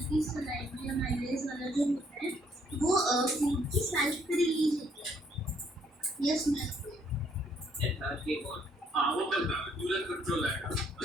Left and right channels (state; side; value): normal; both; correlation 0.67